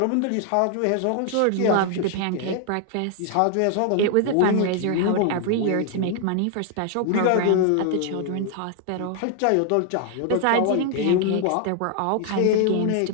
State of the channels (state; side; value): different; both; correlation 0.00